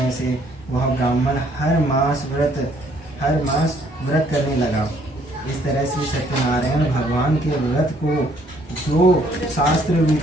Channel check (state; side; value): normal; both; correlation 0.64